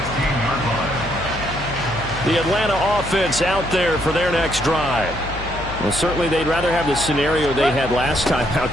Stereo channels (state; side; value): noise; left; hum, 10 dB below the sound